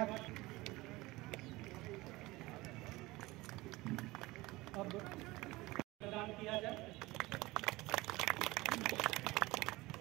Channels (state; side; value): quieter; left; 20.5 dB